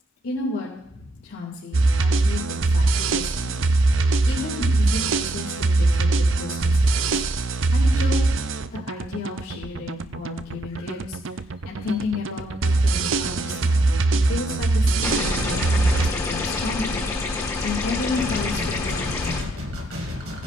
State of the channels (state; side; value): normal; both; correlation 0.75